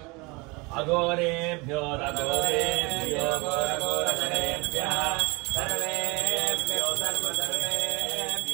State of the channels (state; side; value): quieter; left; 26.7 dB